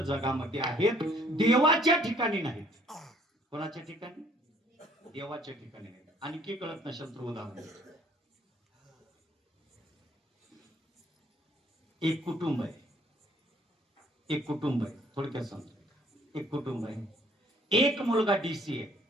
जगामध्ये आहेत, देवाच्या ठिकाणी नाहीत. कोणाच्या ठिकाणी? देवाच्या ठिकाणी नाहीत. आणखी कळत नसेल तर उदाहरण, एक कुटुंब आहे, एक कुटुंब आहे, थोडक्यात सांगतो. एक कुटुंब आहे, एक मुलगा डीसी आहे,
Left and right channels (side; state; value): both; normal; correlation 0.61